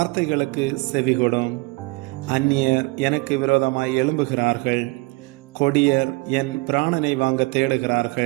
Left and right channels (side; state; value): left; quieter; 25.1 dB